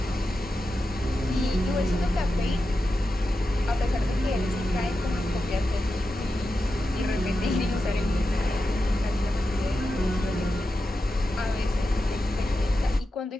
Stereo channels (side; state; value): both; normal; correlation 0.90